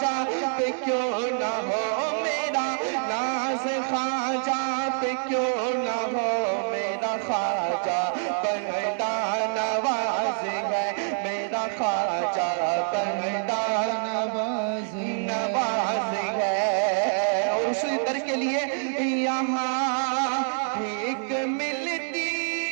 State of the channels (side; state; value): left; silent; 61 dB below the other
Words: پہ کیوں نہ ہو، میرا ناز خواجہ پہ کیوں نہ ہو، میرا خواجہ بندہ نواز ہے، میرا خواجہ بندہ نواز ہے، اور اسی در کے لیے یہاں بھیک ملتی